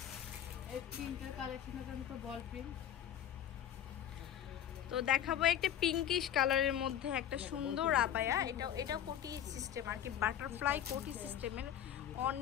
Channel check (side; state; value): right; quieter; 10.5 dB